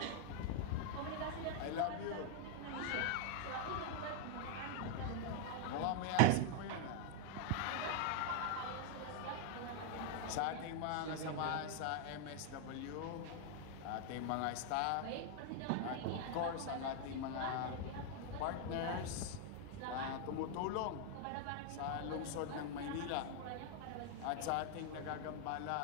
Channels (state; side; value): different; both; correlation 0.00